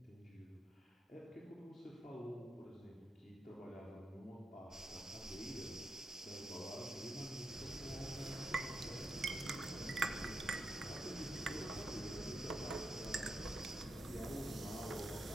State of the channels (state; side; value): normal; both; correlation 0.84